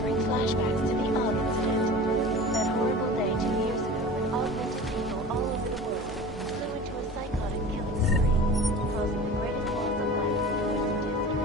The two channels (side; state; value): both; normal; correlation 0.37